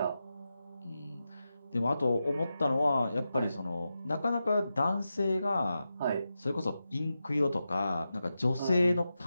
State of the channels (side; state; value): both; inverted; correlation -0.90